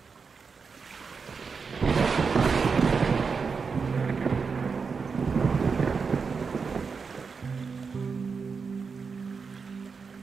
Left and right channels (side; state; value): left; quieter; 5.3 dB